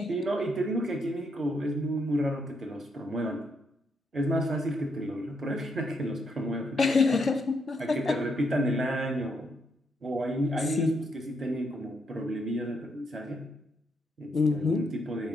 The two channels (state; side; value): normal; both; correlation 0.77